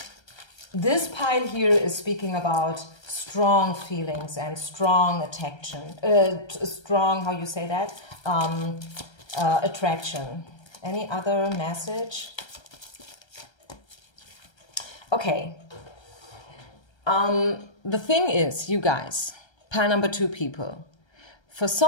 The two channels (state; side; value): late; right; 1.3 ms